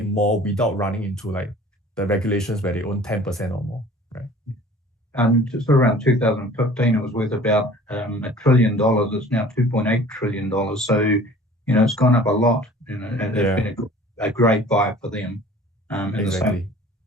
more without running into like the regulations where they own 10% or more, right? Just around 2015, it was worth about $1 trillion. It's now $2.8 trillion. So it's gone up a lot. And it's been a great buy for them. Exactly.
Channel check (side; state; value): both; normal; correlation 0.47